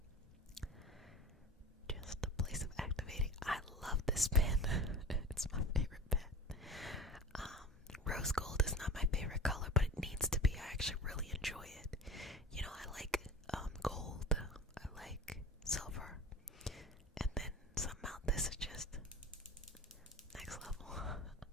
Just a place of activating. I love this pen. It's my favorite pen. Rose gold is not my favorite color, but it needs to be. I actually really enjoy it. I like gold. I like silver. And then somehow this is just next level.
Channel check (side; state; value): both; normal; correlation 0.35